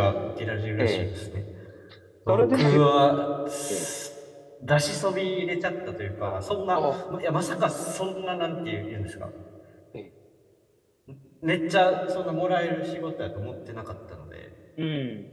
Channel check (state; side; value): identical; both; correlation 1.00